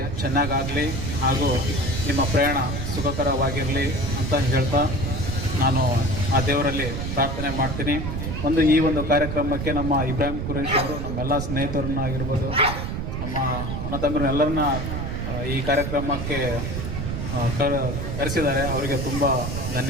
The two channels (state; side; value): noise; right; rumble, 4 dB below the sound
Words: ಚೆನ್ನಾಗಾಗಲಿ ಹಾಗೂ ನಿಮ್ಮ ಪ್ರಯಾಣ ಸುಖಕರವಾಗಿರಲಿ ಅಂತ ಹೇಳ್ತಾ ನಾನು ಆ ದೇವರಲ್ಲಿ ಪ್ರಾರ್ಥನೆ ಮಾಡ್ತೀನಿ. ಈ ಒಂದು ಕಾರ್ಯಕ್ರಮಕ್ಕೆ ನಮ್ಮ ಇಬ್ರಾಹಿಂ ಕುರೇಶ್ ಅವರು ನಮ್ಮೆಲ್ಲ ಸ್ನೇಹಿತರನ್ನ ಆಗಿರ್ಬೋದು, ನಮ್ಮ ಅಣ್ಣ ತಮ್ಮರನ್ನ ಎಲ್ಲರನ್ನ ಈ ಕಾರ್ಯಕ್ರಮಕ್ಕೆ ಕರೆಸಿದ್ದಾರೆ. ಅವರಿಗೆ ತುಂಬ